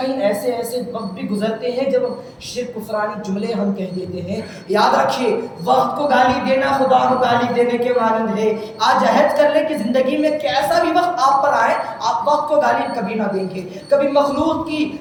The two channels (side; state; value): both; identical; correlation 1.00